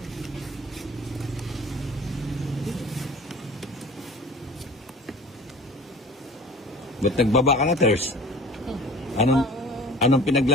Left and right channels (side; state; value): both; normal; correlation 0.43